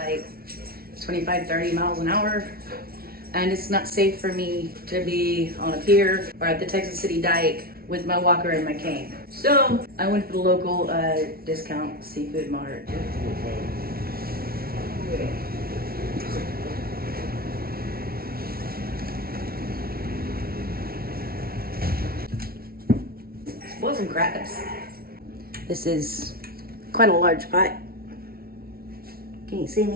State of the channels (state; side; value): late; left; 0.44 ms